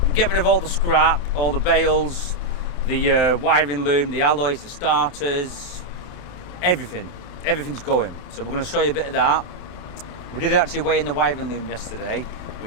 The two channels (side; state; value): right; late; 23 ms